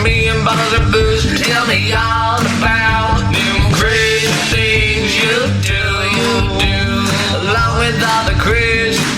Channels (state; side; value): identical; both; correlation 1.00